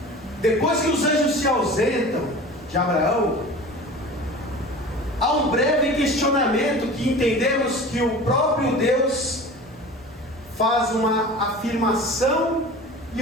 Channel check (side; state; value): both; normal; correlation 0.38